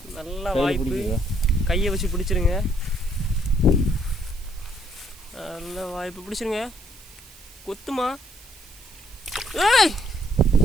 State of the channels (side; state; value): right; noise; hiss, 21 dB below the sound